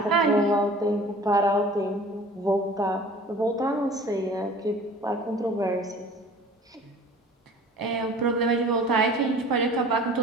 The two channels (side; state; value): both; normal; correlation 0.45